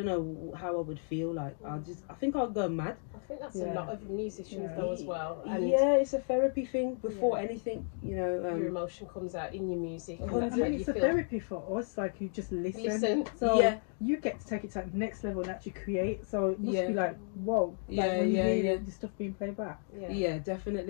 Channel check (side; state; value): right; silent; 56 dB below the other